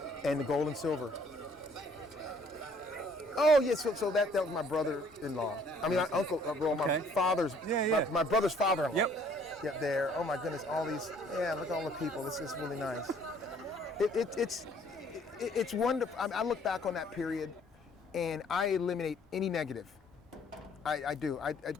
And the gold and silver. Oh yeah, so that was my brother-in-law. I mean, my uncle, my father's, my brother's father-in-law. Yep, there. Oh my goodness, all these. Yeah, look at all the people. This is really nice. It's wonderful. I look back on that period, and I eliminate any negative. I do.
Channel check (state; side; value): normal; both; correlation 0.60